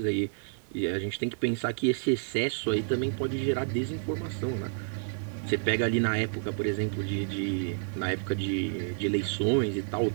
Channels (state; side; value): silent; left; digital silence